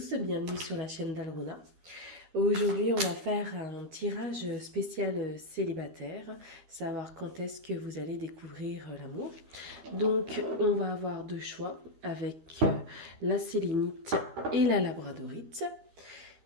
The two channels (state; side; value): late; left; 13 ms